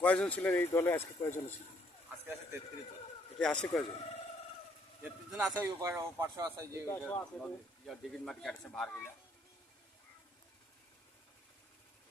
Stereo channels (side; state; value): both; normal; correlation 0.67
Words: কয়জন ছিলেন এই দলে? আজকে কয়জন ছিলেন? আজকে আছে 33 জন। এটা আসে কয়জন? 33 জন আছে, ওই পার্শ্ব আছে, যে ডিগির মাটি কাটছে ভার গিলা।